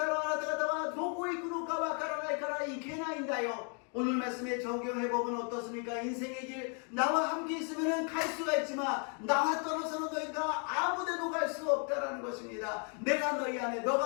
らあなた方はどこへ行くのかわからないから行けないんだよ。 오늘 말씀의 정경회복은 어떻습니까? 인생의 길, 나와 함께 있으면 갈 수가 있지만 나와 떨어서는 너희가 아무데도 갈 수 없다라는 것입니다. 내가 너희 안에,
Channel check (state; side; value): quieter; right; 39.8 dB